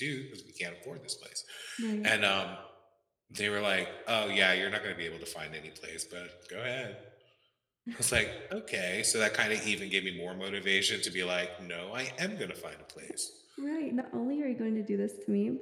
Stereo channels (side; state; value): both; identical; correlation 1.00